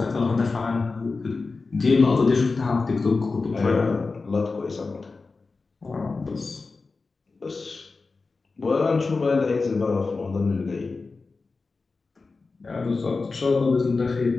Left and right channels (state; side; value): quieter; right; 4.0 dB